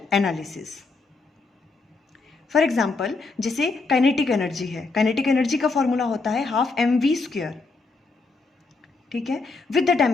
analysis. For example जैसे kinetic energy है, kinetic energy का फॉर्मूला होता है हाफ mv². ठीक है, with the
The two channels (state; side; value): quieter; right; 3.8 dB